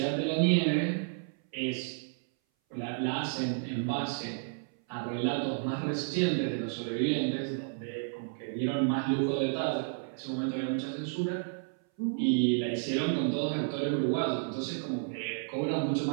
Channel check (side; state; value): left; silent; 57 dB below the other